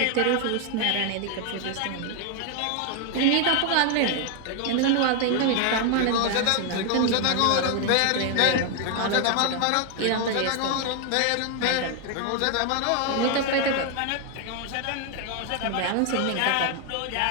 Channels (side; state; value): both; different; correlation 0.00